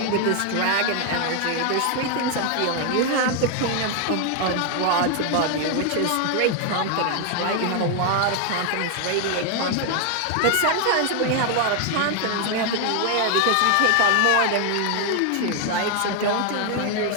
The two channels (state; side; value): different; both; correlation 0.00